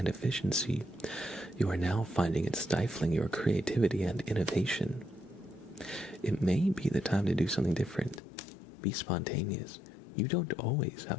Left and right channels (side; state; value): right; drops out; at 8.2 s